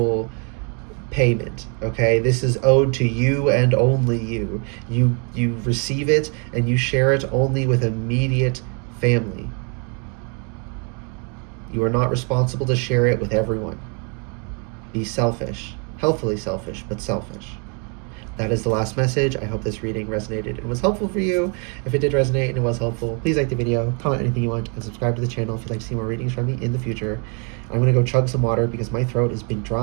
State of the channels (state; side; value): quieter; left; 37.1 dB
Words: payment, okay? This is owed to you and only you. You receive it and you share it only with immediate family. You are not responsible to share it with everyone. Be selfish. Healthily selfish, but selfish. That is the last message. I hope this reading resonated and was helpful for you. If it did resonate and it was helpful, please like the video, comment anything you want, and subscribe to the channel if you'd like to see more readings from me in the future. I'm going to go chug some water because my throat has been